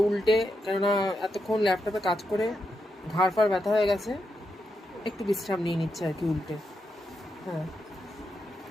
উল্টে, কেননা এতক্ষণ ল্যাপটপে কাজ করে ঘাড় ফাড় ব্যথা হয়ে গেছে, একটু বিশ্রাম নিয়ে নিচ্ছে আর কি উল্টে। হ্যাঁ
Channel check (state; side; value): normal; both; correlation 0.84